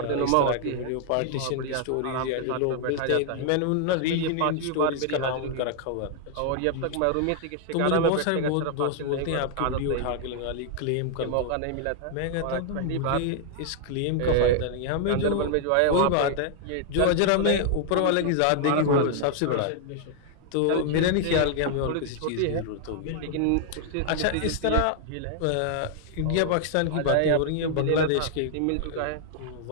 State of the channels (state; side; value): different; both; correlation 0.00